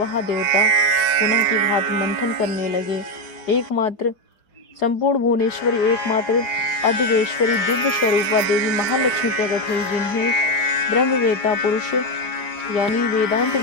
देवता पुनः की भांति मंथन करने लगे। एकमात्र संपूर्ण भुवनेश्वरी, एकमात्र अद्वेश्वरी दिव्य स्वरूपा देवी महालक्ष्मी प्रकट हुई, जिन्हें ब्रह्मवेता पुरुष यानी वेदांत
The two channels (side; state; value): right; late; 4.9 ms